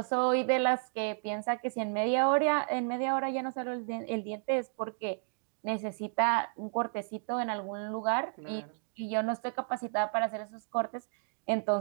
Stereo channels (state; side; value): silent; left; digital silence